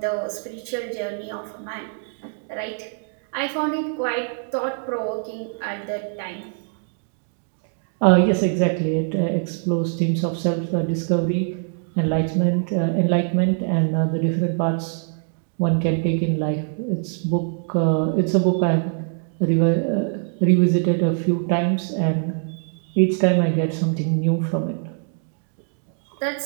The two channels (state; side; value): silent; left; 57 dB below the other